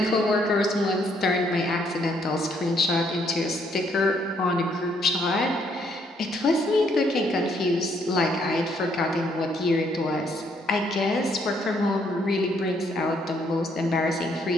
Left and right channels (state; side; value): normal; both; correlation 0.69